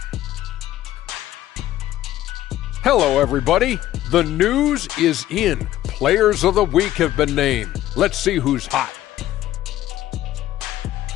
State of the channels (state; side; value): quieter; right; 13.7 dB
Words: Hello, everybody. The news is in. Players of the week have been named. Let's see who's hot.